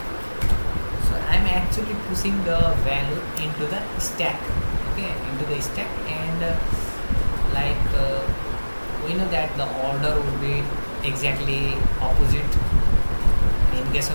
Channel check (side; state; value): both; inverted; correlation -1.00